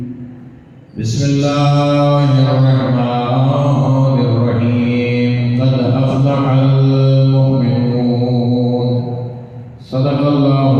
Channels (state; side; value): identical; both; correlation 1.00